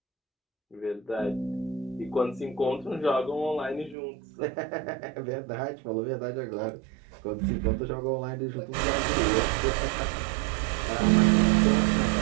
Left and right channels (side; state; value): left; drops out; at 4.0 s